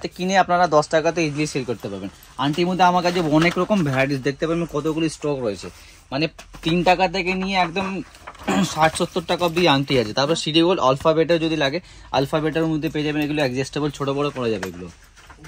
কিনে আপনারা 10 টাকাতে ইজিলি সেল করতে পারবেন। আংটির মধ্যে আমার কাছে অনেক রকম ভ্যারাইটিস দেখতে পাবেন, কতগুলি স্টক রয়েছে। মানে 3 টাকা থেকে নিয়ে একদম 60-70 টাকা অব্দি আংটি আছে। তারপর সিডি গোল্ড আলফাবেটের যদি লাগে, আলফাবেটের মধ্যে পেয়ে যাবেন, এগুলো অ্যাডজাস্টেবল ছোট বড় করা যাবে এগুলো।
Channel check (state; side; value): identical; both; correlation 1.00